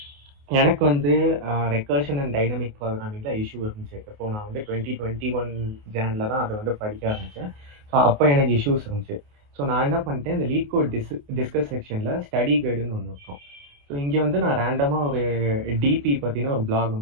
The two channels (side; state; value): left; late; 28 ms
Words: எனக்கு வந்து ரெக்கர்ஷன் அண்ட் டைனமிக் ப்ரோக்ராமிங்கில் இஷ்யூ இருந்துச்சு. இப்போ நான் வந்து 2021 ஜானில் தான் அதை வந்து படிக்க ஆரம்பித்தேன். ஸோ அப்போ எனக்கு இஷ்யூஸ் இருந்துச்சு. ஸோ நான் என்ன பண்ணிட்டேன், இந்த லீட் கோட் டிஸ்கஸ் செக்ஷனில் ஸ்டடி கைடுன்னு ஒன்று இருக்கும். ஸோ இங்கே வந்து நான் ரேண்டமாக ஒரு டிபி பற்றின ஒரு பிளாக்